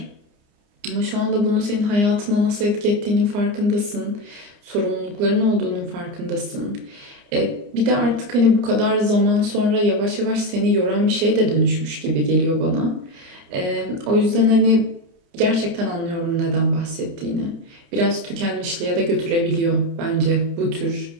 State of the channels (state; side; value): late; left; 29 ms